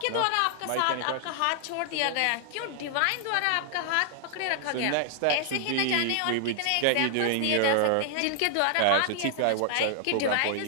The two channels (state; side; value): different; both; correlation 0.00